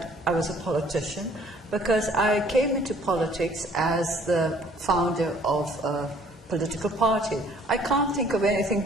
I was a politician, because I came into politics as the founder of a political party. I can't think of anything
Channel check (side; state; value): both; normal; correlation 0.58